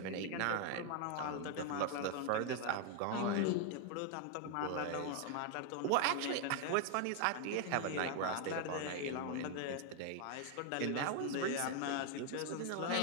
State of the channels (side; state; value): both; different; correlation 0.00